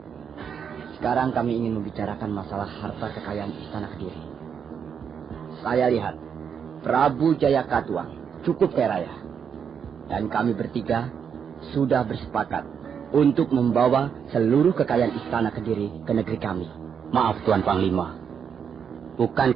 Sekarang kami ingin membicarakan masalah harta kekayaan Istana Kediri. Saya lihat Prabu Jayakatwang cukup kaya raya. Dan kami bertiga sudah bersepakat untuk membawa seluruh kekayaan Istana Kediri ke negeri kami. Maaf Tuan Panglima,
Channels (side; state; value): left; quieter; 7.3 dB